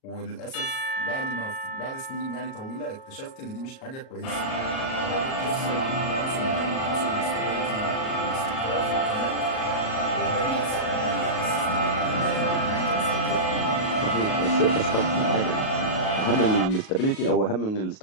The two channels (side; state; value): right; late; 37 ms